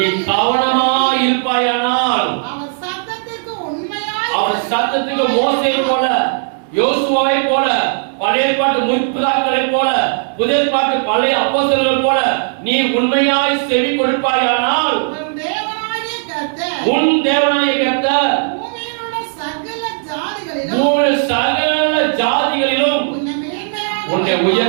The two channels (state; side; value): silent; left; digital silence